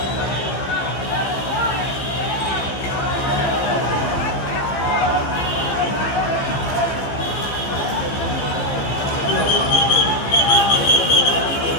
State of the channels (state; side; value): late; right; 15 ms